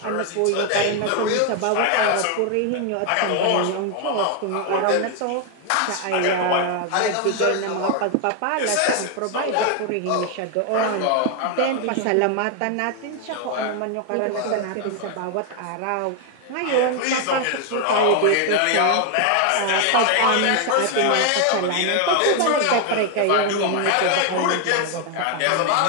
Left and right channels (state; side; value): different; both; correlation 0.01